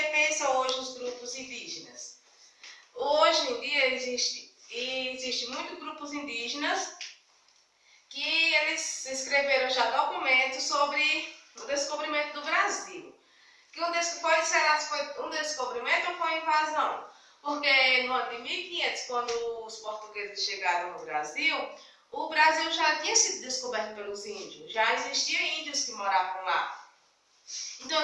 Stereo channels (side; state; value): both; identical; correlation 1.00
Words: pensam hoje os grupos indígenas. Hoje em dia existe muitos grupos indígenas que eles escreveram já documentos sobre o descobrimento do Brasil. Será que foi um descobrimento ou foi uma invasão? Porque no ano de 1500, quando os portugueses chegaram no Brasil, o Brasil já tinha sido descoberto pelos índios, já existiam índios que moravam lá. Então